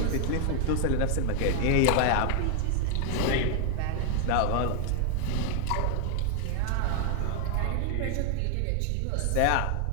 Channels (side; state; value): both; different; correlation 0.00